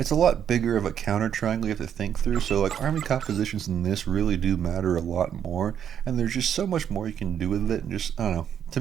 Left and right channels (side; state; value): left; quieter; 8.9 dB